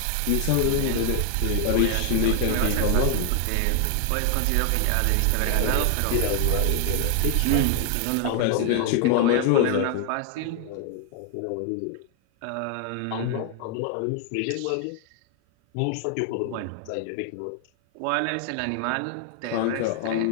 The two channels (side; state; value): both; different; correlation 0.00